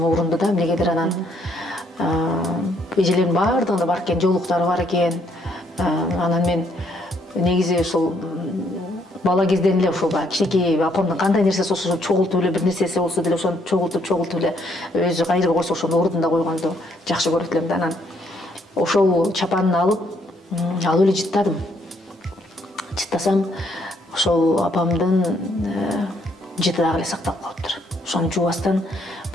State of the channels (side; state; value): both; normal; correlation 0.70